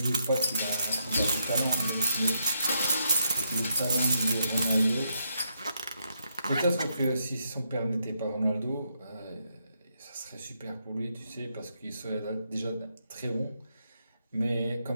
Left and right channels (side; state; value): both; inverted; correlation -0.78